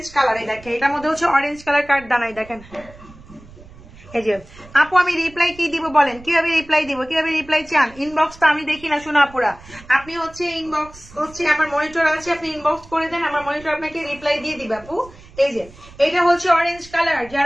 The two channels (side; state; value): right; noise; rumble, 21 dB below the sound